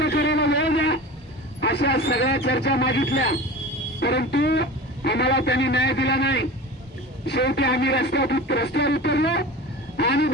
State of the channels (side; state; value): both; normal; correlation 0.34